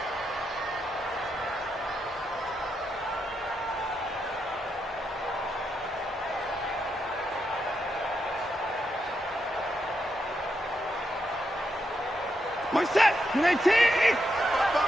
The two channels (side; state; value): both; normal; correlation 0.82